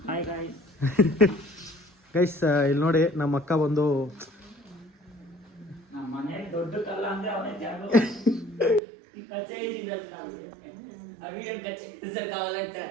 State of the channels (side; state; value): left; drops out; at 8.8 s